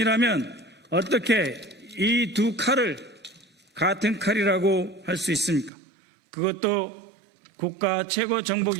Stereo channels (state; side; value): drops out; left; at 5.7 s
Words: 어떻게 이 두 칼을 같은 칼이라고 할 수 있습니까? 그것도 국가 최고